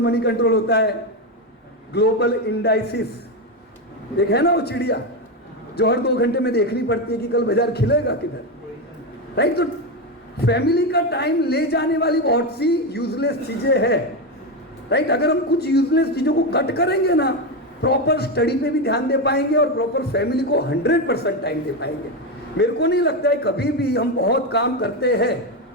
होता है। ग्लोबल इंडाइसिस एक है ना वो चिड़िया जो हर 2 घंटे में देखनी पड़ती है कि कल बाजार खिलेगा किधर, राइट? तो फैमिली का टाइम ले जाने वाली बहुत सी यूजलेस चीजें हैं, राइट? अगर हम कुछ यूजलेस चीजों को कट करेंगे ना, प्रॉपर स्टडी पे भी ध्यान दे पाएंगे और प्रॉपर फैमिली को 100% टाइम दे पाएंगे। मेरे को नहीं लगता है कभी भी हम बहुत काम करते हैं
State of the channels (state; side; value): normal; both; correlation 0.11